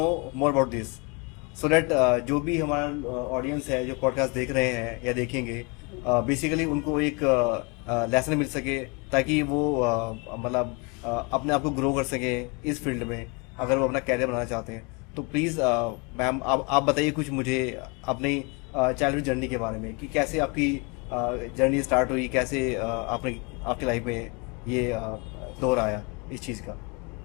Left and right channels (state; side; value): quieter; right; 31.1 dB